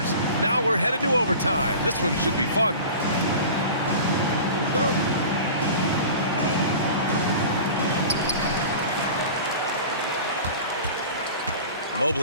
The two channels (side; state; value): both; inverted; correlation -0.38